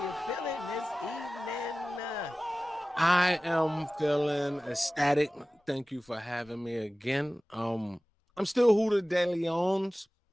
feeling this evening? I am feeling ecstatic. Thank you for having me again. I'm still Huda De Leon's.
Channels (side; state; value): both; normal; correlation 0.97